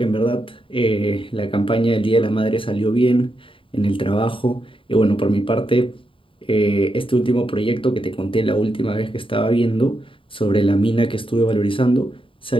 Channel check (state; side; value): late; right; 0.25 ms